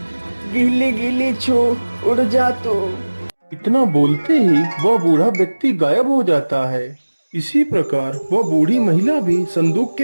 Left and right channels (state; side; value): inverted; both; correlation -1.00